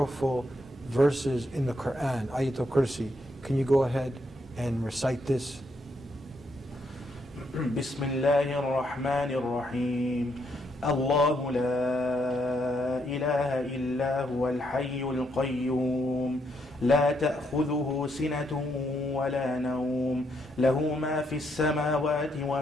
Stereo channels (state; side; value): normal; both; correlation 0.76